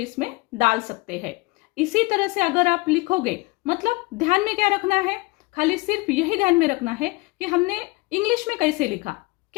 डाल सकते हैं. इसी तरह से अगर आप लिखोगे, मतलब ध्यान में क्या रखना है, खाली सिर्फ यही ध्यान में रखना है कि हमने इंग्लिश में कैसे लिखा,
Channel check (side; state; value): right; quieter; 24.0 dB